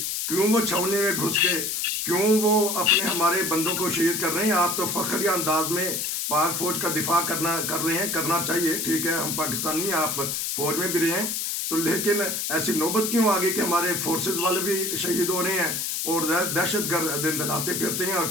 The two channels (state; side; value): noise; left; hiss, 1 dB below the sound